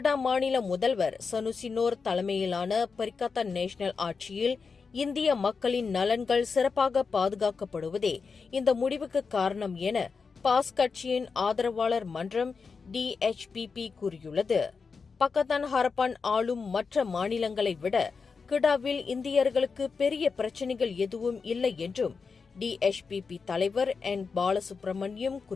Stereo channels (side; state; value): right; quieter; 5.1 dB